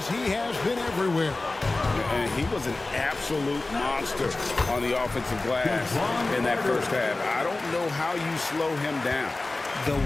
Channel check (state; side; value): quieter; right; 3.1 dB